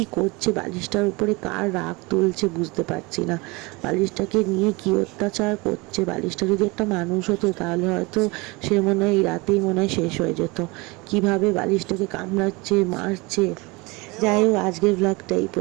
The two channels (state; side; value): quieter; left; 25.3 dB